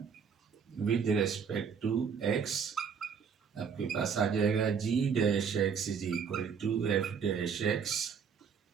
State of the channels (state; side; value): quieter; left; 6.7 dB